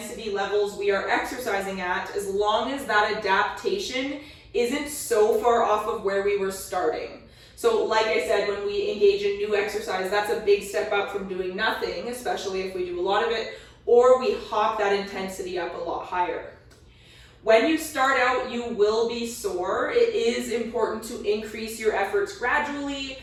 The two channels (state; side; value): identical; both; correlation 1.00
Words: levels we are exercising at as long as that adaptation isn't so far off of where we were starting. So like I said, when we engage in new exercise, that's a big step up from doing nothing, especially if we do a lot of it, or we hop that intensity up a lot higher. When you start out, you will be sore. It is important to increase your efforts gradually.